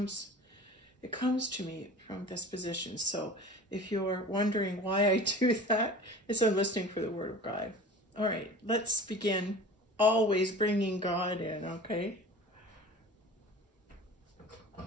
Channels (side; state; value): both; normal; correlation 0.38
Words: to me from this position. So if you're wondering why I do that, it's I'm listening for the word of God. All right, let's begin. Always bringing God in, okay?